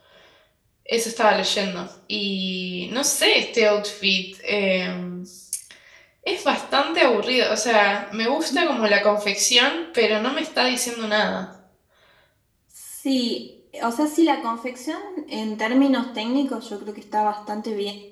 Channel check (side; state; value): both; identical; correlation 1.00